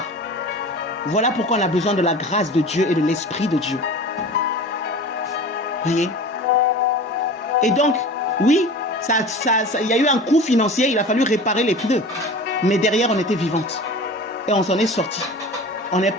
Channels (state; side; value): normal; both; correlation 0.37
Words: Voilà pourquoi on a besoin de la grâce de Dieu et de l'Esprit de Dieu. Voyez? Et donc, oui, il y a eu un coût financier, il a fallu réparer les pneus. Mais derrière, on était vivante. Et on s'en est sorti. On est